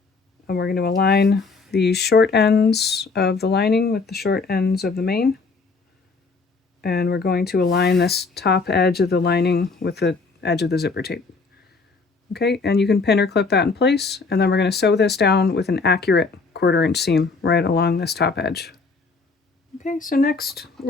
and we're going to align the short ends of the lining with the short ends of the main. And we're going to align this top edge of the lining with the edge of the zipper tape. Okay, and you can pin or clip that in place, and then we're going to sew this down with an accurate 1/4 inch seam right along this top edge. Okay, so next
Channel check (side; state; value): right; quieter; 4.3 dB